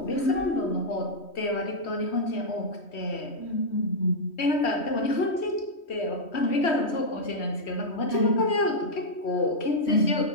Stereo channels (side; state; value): right; late; 3.1 ms